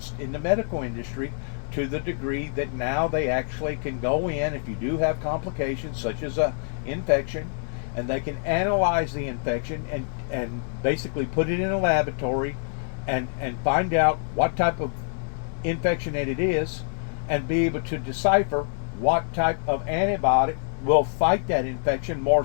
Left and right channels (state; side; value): silent; right; 61 dB below the other